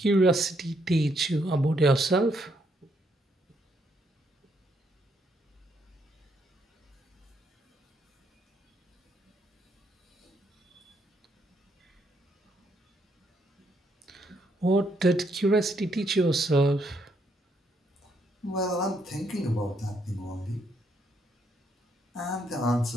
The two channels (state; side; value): normal; both; correlation 0.74